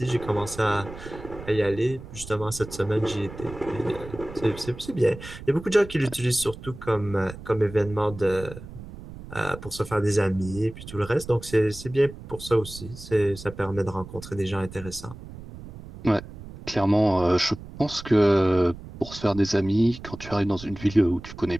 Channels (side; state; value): right; noise; rumble, 14 dB below the sound